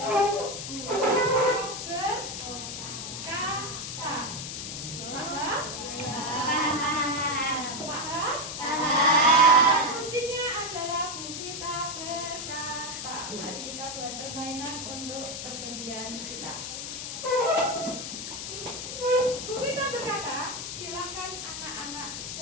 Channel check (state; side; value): noise; left; hiss, 6 dB below the sound